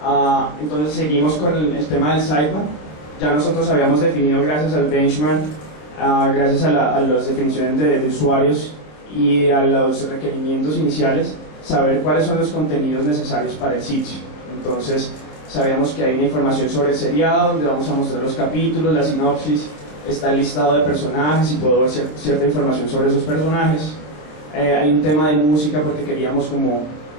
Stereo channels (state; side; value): late; right; 27 ms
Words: Entonces seguimos con el tema del sidebar. Ya nosotros habíamos definido, gracias al benchmark, gracias a las definiciones de usuarios y a los requerimientos iniciales, saber cuáles son los contenidos necesarios para el sitio. Entonces sabíamos que hay una información sobre el seriado, donde vamos a mostrar los capítulos, la sinopsis, está el listado de personajes y puedo ver cierta información sobre esos personajes. Hay un tema de música porque queríamos como